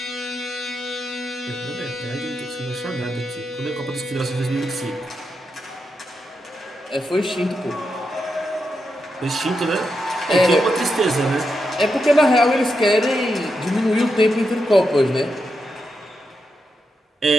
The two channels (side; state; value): both; normal; correlation 0.85